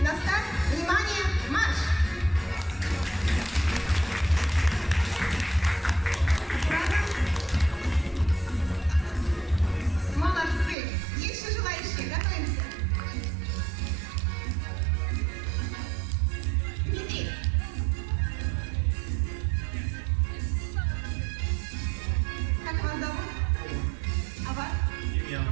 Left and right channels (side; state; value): left; drops out; at 10.8 s